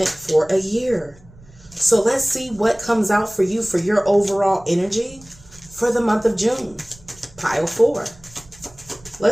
for a year. So let's see what comes out for you for your overall energy for the month of June. Pile 4.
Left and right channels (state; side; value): noise; right; rumble, 24 dB below the sound